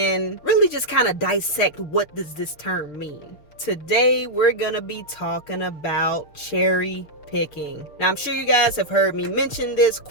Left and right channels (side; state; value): right; late; 6.5 ms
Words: really just kind of dissect what does this term mean. Today we're gonna be talking about cherry picking. Now, I'm sure you guys have heard me mention this